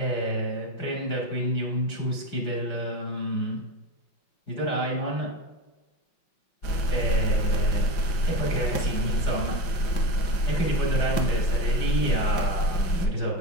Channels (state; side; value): late; right; 5.6 ms